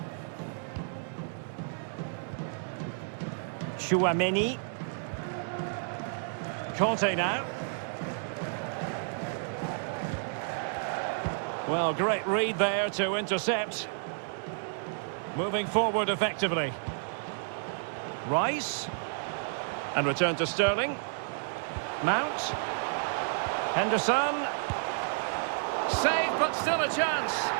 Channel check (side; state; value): left; silent; digital silence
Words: Chouameni. Conte now. Well, great read there to intercept. Moving forward effectively. Rice. And return to Sterling. Mount. Henderson. Save, but still a chance.